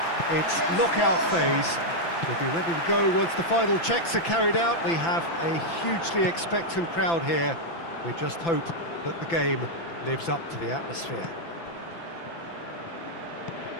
its knockout phase. We'll be ready to go once the final checks are carried out. We have a hugely expectant crowd here. We just hope that the game lives up to the atmosphere.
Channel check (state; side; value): late; right; 5.9 ms